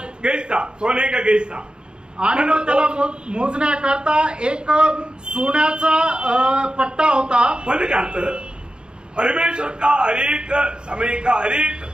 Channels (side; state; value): left; late; 0.049 ms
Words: गेज था. सोने का गेज था. आणि मग त्याला मोजण्याकरता एक सोन्याचा पट्टा होता. म्हणजे काय अर्थ, परमेश्वर का हरेक समय का हरेक